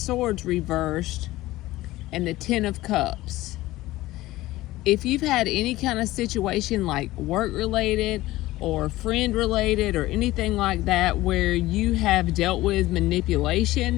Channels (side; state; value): right; quieter; 17.4 dB